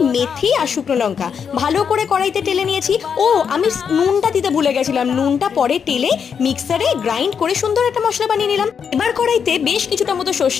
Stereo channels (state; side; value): quieter; right; 6.9 dB